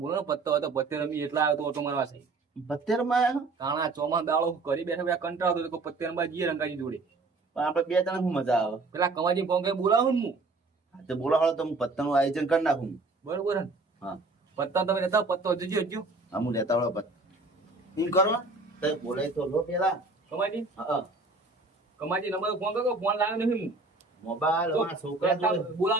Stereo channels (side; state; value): left; quieter; 3.5 dB